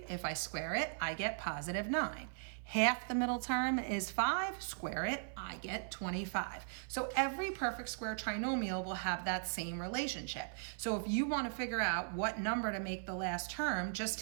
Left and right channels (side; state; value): left; silent; 52 dB below the other